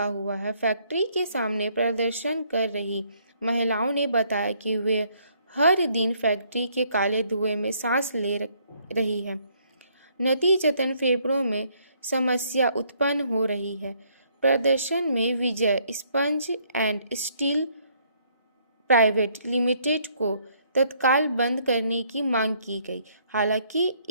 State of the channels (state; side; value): inverted; both; correlation -0.67